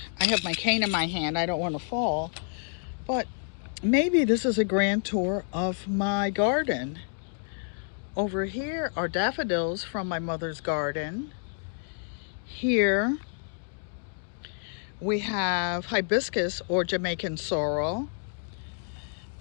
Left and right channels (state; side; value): silent; right; digital silence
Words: I have my cane in my hand. I don't want to fall, but maybe this is a grand tour of my garden. Over here are daffodils from my mother's garden. Here we have hibiscus or Jamaican sorrel,